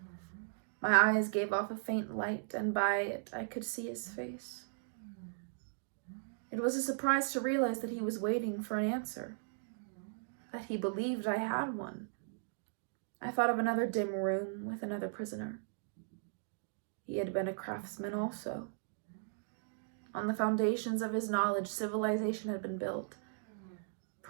My eyes gave off a faint light, and by it I could see his face. It was a surprise to realize that he was waiting for an answer, that he believed I had one. I thought of another dim room with another prisoner. He had been a craftsman also. On the foundations of his knowledge, civilization had been built.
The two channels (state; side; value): silent; left; digital silence